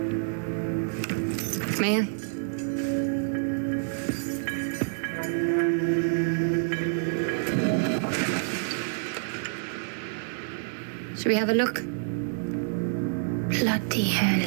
May I? Should we have a look? Bloody hell.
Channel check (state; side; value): silent; left; 57 dB below the other